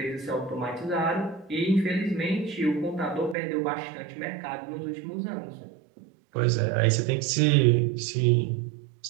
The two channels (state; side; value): drops out; left; at 3.4 s